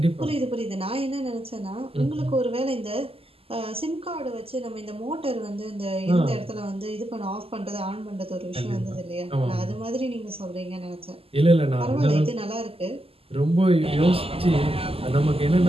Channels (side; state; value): left; late; 0.28 ms